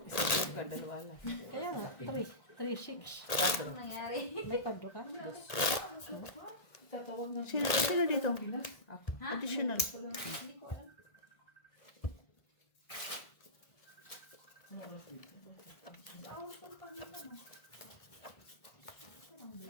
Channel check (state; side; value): late; right; 1.5 ms